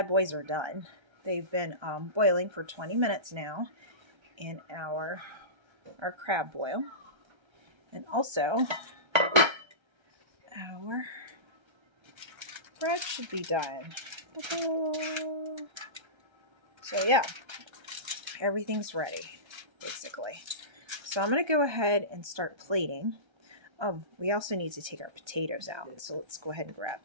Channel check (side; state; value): left; late; 1.3 ms